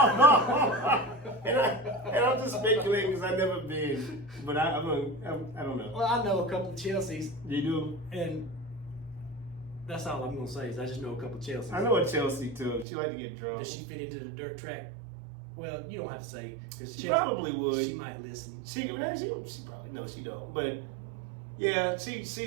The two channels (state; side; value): drops out; left; at 12.9 s